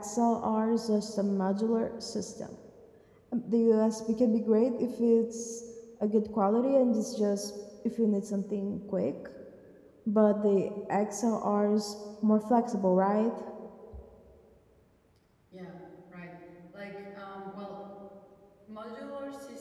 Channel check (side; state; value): both; identical; correlation 1.00